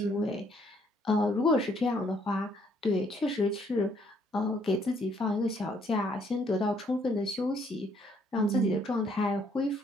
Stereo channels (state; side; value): normal; both; correlation 0.67